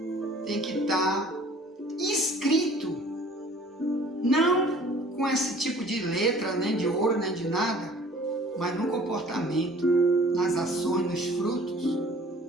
tem que estar escrito, não com esse tipo de letra, nem de ouro, nem de nada, mas no comportamento, nas ações, nos frutos,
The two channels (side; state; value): both; normal; correlation 0.51